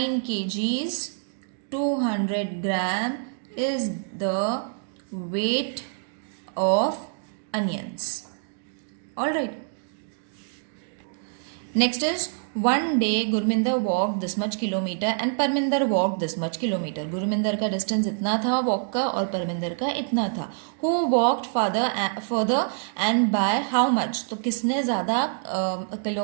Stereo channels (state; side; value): silent; left; digital silence